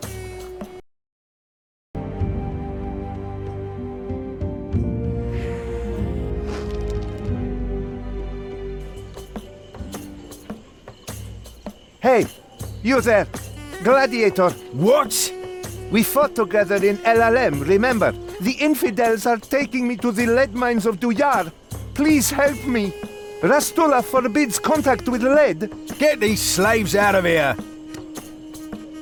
Hey, you there! Gladiator! What? We fought together in LLM, remember? The infidels are taking me to the lead mines of Duyar. Please help me. Rastula forbids contact with lead. Get these slaves out of here!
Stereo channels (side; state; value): both; identical; correlation 1.00